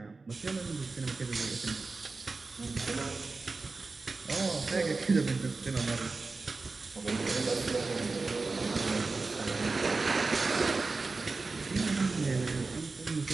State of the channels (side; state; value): left; quieter; 3.9 dB